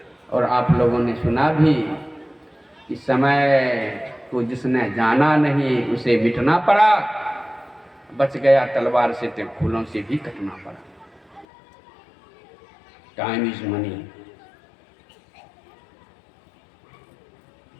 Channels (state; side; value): drops out; right; at 11.5 s